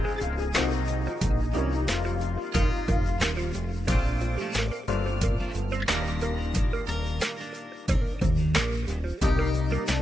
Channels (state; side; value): normal; both; correlation 0.88